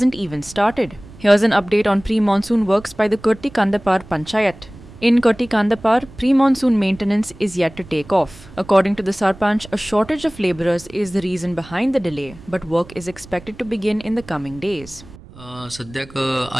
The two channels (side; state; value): right; noise; rumble, 20 dB below the sound